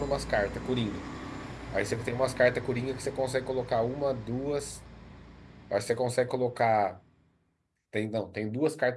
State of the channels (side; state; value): both; identical; correlation 1.00